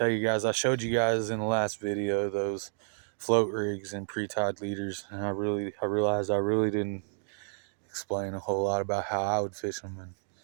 you guys I showed you guys in the last video those float rigs and pre-tied leaders, and I realized I really didn't explain a whole lot about how I would fish them,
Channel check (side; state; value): left; silent; digital silence